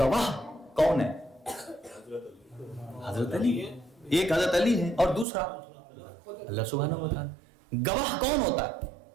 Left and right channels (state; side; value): drops out; left; at 5.2 s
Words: کون ہے؟ حضرت علی. ایک حضرت علی ہے اور دوسرا اللہ سبحانہ و تعالیٰ. گواہ کون ہوتا ہے؟